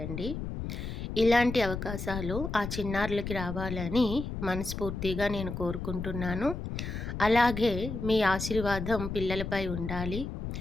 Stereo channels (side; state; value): left; noise; rumble, 5 dB below the sound